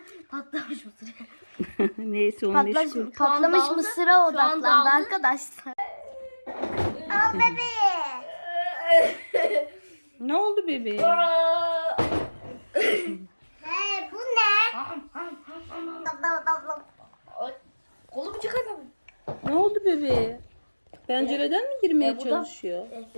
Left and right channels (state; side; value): inverted; both; correlation -1.00